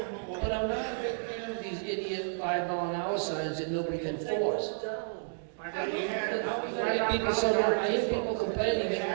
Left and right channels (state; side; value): silent; left; digital silence